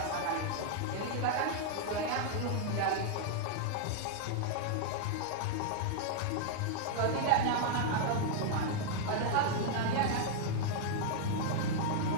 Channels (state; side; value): different; both; correlation -0.01